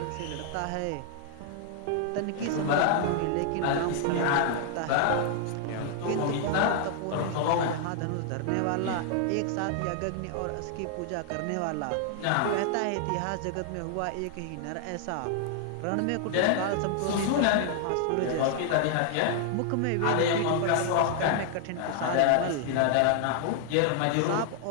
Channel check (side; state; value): both; different; correlation 0.00